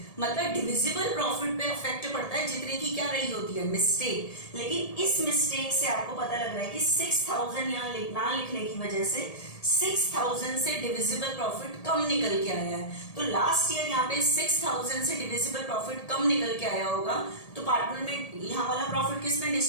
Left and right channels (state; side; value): late; right; 1.8 ms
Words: मतलब डिविजिबल प्रॉफिट पे अफेक्ट पड़ता है जितने की क्या रही होती है? मिस्टेक। लेकिन इस मिस्टेक से आपको पता लग रहा है कि 6000 यहाँ ना लिखने की वजह से 6000 से डिविजिबल प्रॉफिट कम निकल के आया है। तो लास्ट ईयर यहाँ पे 6000 से डिविजिबल प्रॉफिट कम निकल के आया होगा, तो पार्टनर में यहाँ वाला प्रॉफिट किस में